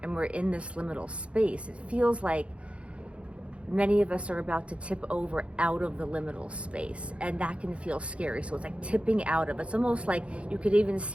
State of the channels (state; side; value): late; left; 0.060 ms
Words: and we're in this liminal space, it feels like many of us are about to tip over out of the liminal space, and that can feel scary. So it's like tipping out of, it's almost like you could even